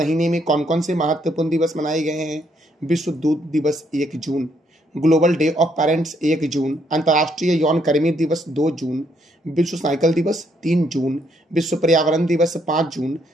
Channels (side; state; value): both; normal; correlation 0.72